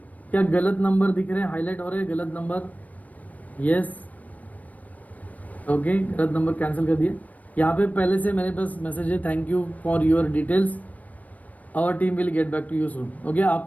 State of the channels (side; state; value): right; late; 0.073 ms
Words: क्या गलत नंबर दिख रहे हैं, हाईलाइट हो रहे हैं गलत नंबर? यस, ओके, गलत नंबर कैंसिल कर दिए। यहाँ पे पहले से मेरे पास मैसेज है, thank you for your details, our team will get back to you soon. Okay,